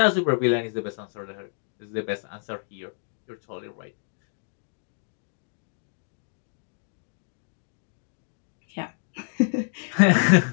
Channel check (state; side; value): silent; right; digital silence